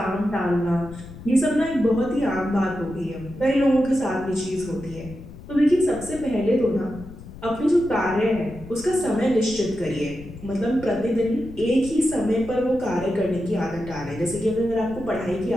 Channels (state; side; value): noise; left; rumble, 15 dB below the sound